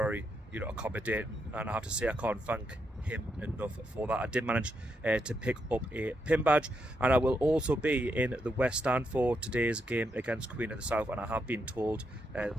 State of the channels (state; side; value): normal; both; correlation 0.81